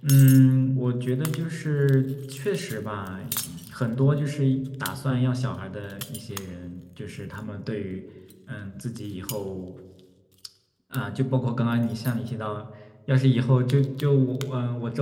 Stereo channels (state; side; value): identical; both; correlation 1.00